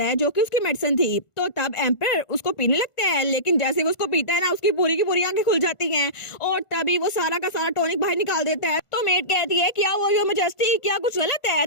है जो कि उसकी मेडिसिन थी। तो तब एम्पर उसको पीने लगता है, लेकिन जैसे वो उसको पीता है ना उसकी पूरी की पूरी आंखें खुल जाती हैं, और तभी वो सारा का सारा टॉनिक बाहर निकाल देता है। तो मेट कहती है क्या वो योर मैजेस्टी क्या कुछ गलत है।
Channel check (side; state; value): right; late; 1.5 ms